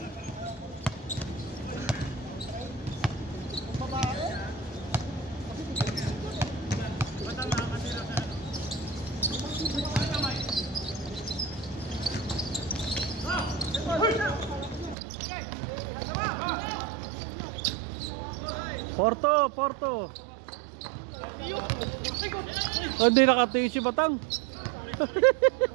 Porto, Porto. Hindi nakatingin si Batang.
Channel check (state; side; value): drops out; left; at 15.0 s